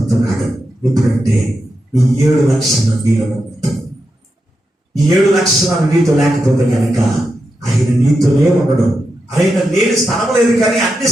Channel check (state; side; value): normal; both; correlation 0.87